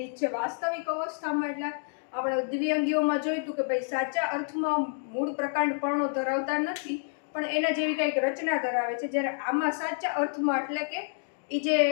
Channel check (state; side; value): silent; right; digital silence